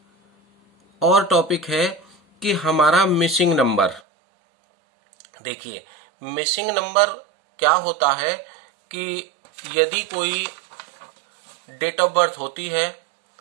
और टॉपिक है कि हमारा मिसिंग नंबर। देखिए, मिसिंग नंबर क्या होता है कि यदि कोई डेट ऑफ बर्थ होती है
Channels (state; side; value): drops out; left; at 4.0 s